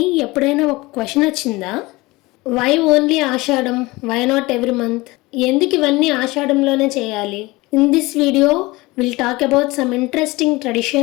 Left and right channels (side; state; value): right; quieter; 21.9 dB